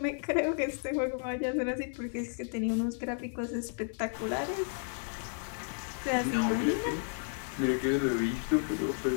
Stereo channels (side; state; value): right; silent; 56 dB below the other